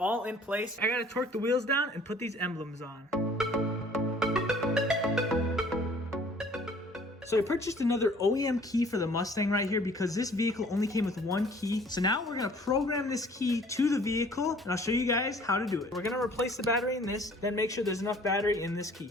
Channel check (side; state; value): both; normal; correlation 0.53